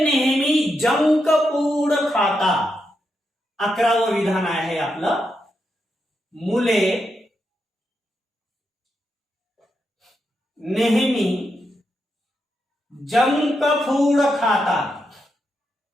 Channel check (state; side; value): normal; both; correlation 0.84